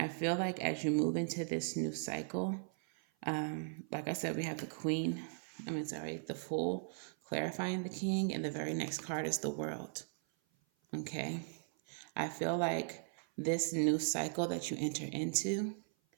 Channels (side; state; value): left; silent; 52 dB below the other